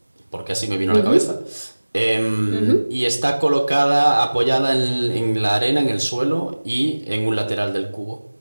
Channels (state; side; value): inverted; both; correlation -1.00